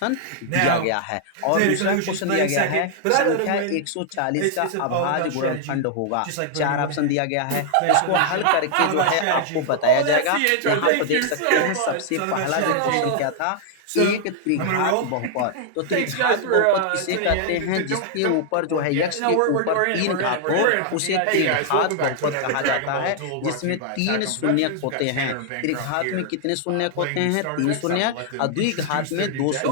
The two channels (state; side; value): different; both; correlation -0.01